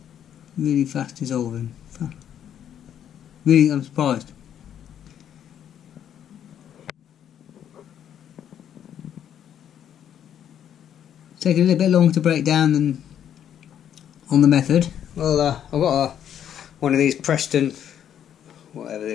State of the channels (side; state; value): right; quieter; 9.7 dB